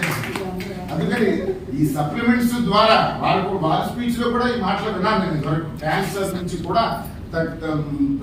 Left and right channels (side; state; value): both; identical; correlation 1.00